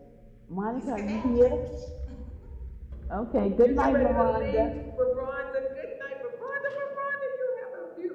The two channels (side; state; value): both; identical; correlation 1.00